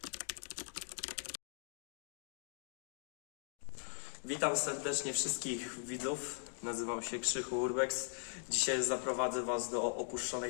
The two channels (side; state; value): right; silent; digital silence